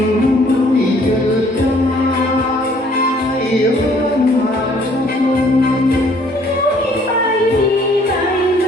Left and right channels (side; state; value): both; normal; correlation 0.60